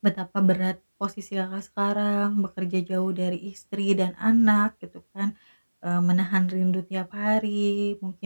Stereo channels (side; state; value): both; inverted; correlation -1.00